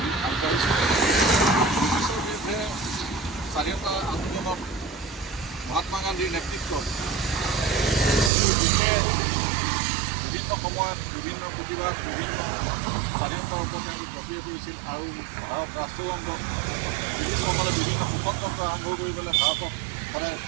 ব্ৰিটিছৰ বিৰুদ্ধে স্বাধীনতা আন্দোলনত মহাত্মা গান্ধীৰ নেতৃত্বত বিভিন্ন সময়ত বিভিন্ন প্ৰতিবাদ বিভিন্ন স্বাধীনতাৰ ওপৰত জপিয়াই কৰিছিল আৰু ভাৰত ৰাষ্ট্ৰযন্ত্ৰত ব্ৰিটিছসকলে বিভিন্ন শাসনতন্ত্ৰ আৰম্ভ কৰি পেলাই ভাৰতক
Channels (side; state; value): left; drops out; at 8.3 s